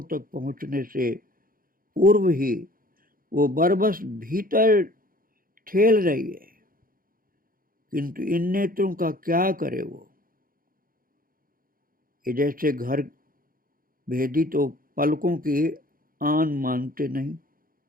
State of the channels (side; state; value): left; late; 0.41 ms